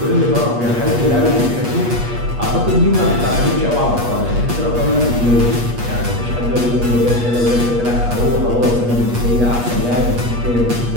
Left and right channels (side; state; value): left; late; 8.3 ms